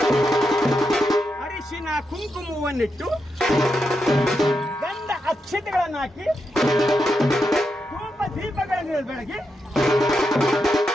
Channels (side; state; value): both; normal; correlation 0.85